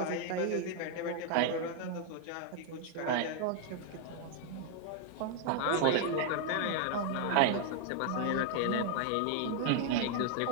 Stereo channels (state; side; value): different; both; correlation 0.00